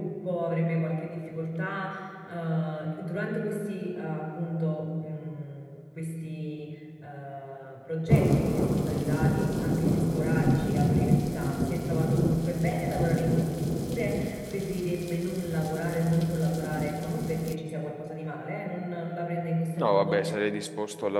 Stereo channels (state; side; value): identical; both; correlation 1.00